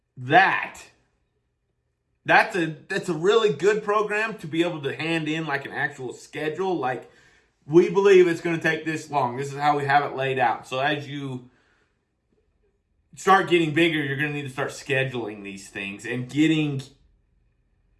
that's a really good program to be able to hand in like an actual schedule. Like, we believe it's going to take this long. This is how we have it laid out. So as you start getting bigger, you're going to need to start scheduling these things and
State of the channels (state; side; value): identical; both; correlation 1.00